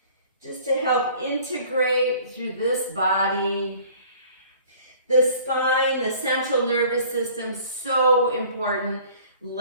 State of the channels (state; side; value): inverted; both; correlation -0.50